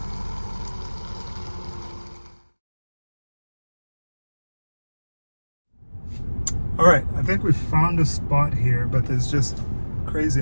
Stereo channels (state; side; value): inverted; both; correlation -1.00